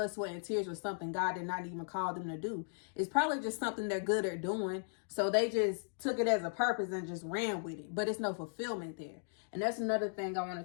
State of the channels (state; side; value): silent; right; digital silence